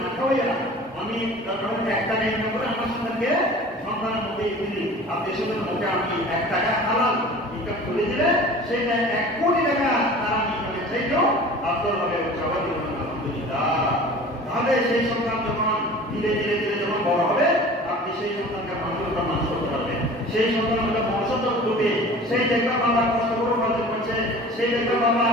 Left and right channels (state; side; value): normal; both; correlation 0.42